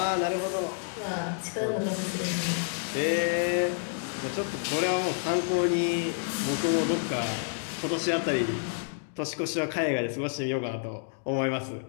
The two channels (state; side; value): silent; right; digital silence